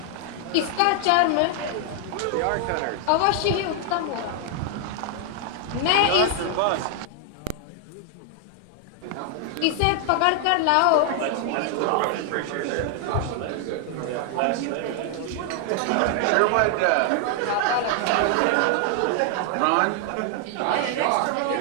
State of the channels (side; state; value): both; different; correlation 0.00